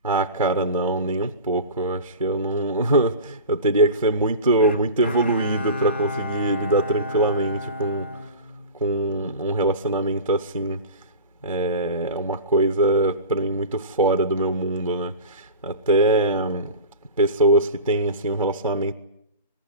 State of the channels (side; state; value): both; inverted; correlation -0.33